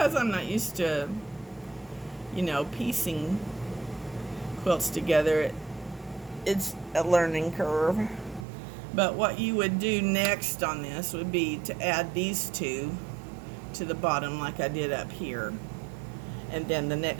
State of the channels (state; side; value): drops out; left; at 8.5 s